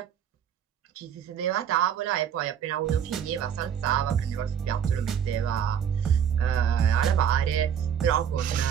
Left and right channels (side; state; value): left; quieter; 8.6 dB